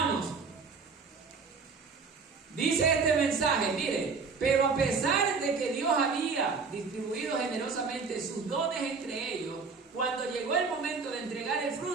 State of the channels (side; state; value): left; quieter; 4.9 dB